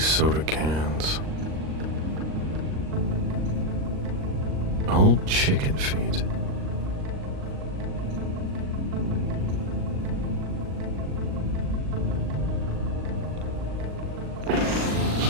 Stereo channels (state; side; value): late; left; 39 ms